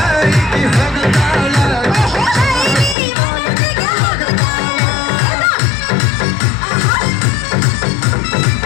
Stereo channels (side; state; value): right; drops out; at 3.0 s